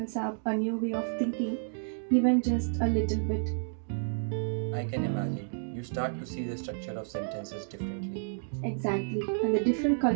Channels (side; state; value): left; silent; digital silence